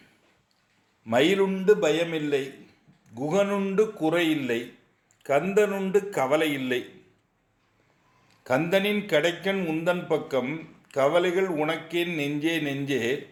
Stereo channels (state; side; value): identical; both; correlation 1.00